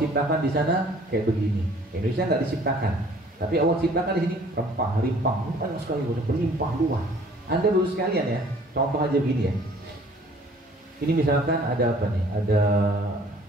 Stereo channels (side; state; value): both; normal; correlation 0.54